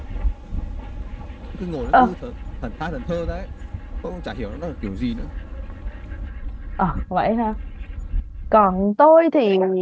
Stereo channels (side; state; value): both; identical; correlation 1.00